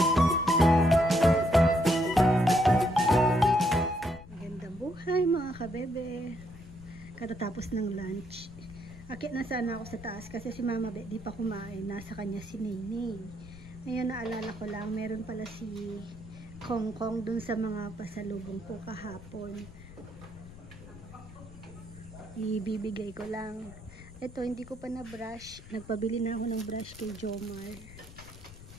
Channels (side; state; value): left; noise; rumble, 17 dB below the sound